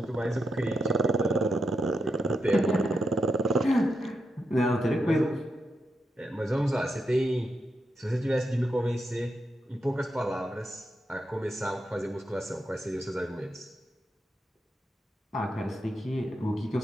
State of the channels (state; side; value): normal; both; correlation 0.85